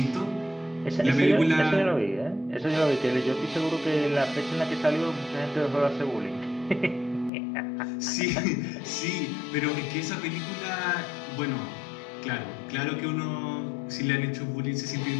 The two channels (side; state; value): right; drops out; at 7.3 s